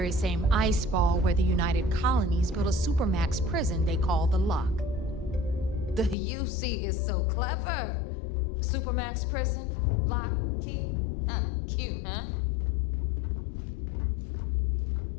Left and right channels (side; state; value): right; drops out; at 6.2 s